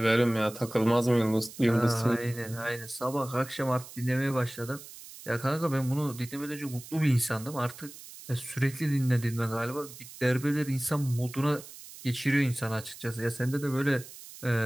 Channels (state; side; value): noise; right; hiss, 16 dB below the sound